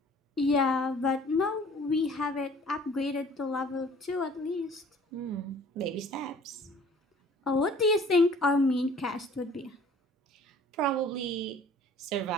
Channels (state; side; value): normal; both; correlation 0.51